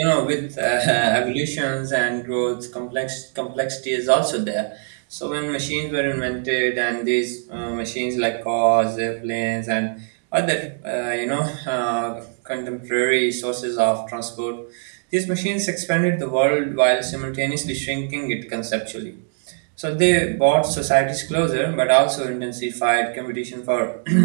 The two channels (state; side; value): silent; left; 62 dB below the other